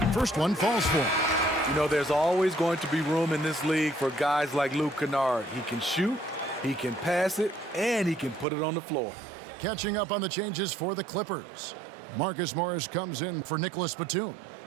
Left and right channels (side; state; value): left; drops out; at 8.5 s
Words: First one falls for him. You know, there's always going to be room in this league for guys like Luke Kennard. He can shoot, he can pass it, and he can put it on the floor. Catching up on the changes for the Clippers. Marcus Morris comes in for Nicholas Batum.